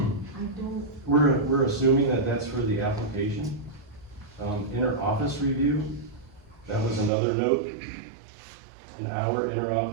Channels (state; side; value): drops out; left; at 7.1 s